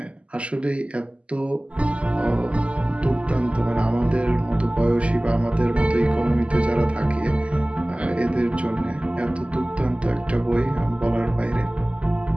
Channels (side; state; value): left; late; 0.058 ms